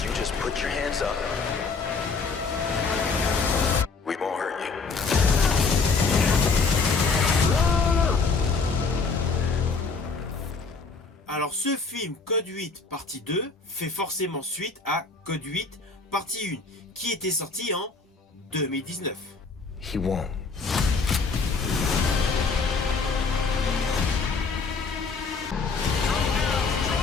you just put your hands up, we won't hurt you. Alors ce film Code 8 partie 2 fait forcément suite à Code 8 partie 1 qui était sorti en 2019. He won't.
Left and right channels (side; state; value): right; quieter; 4.5 dB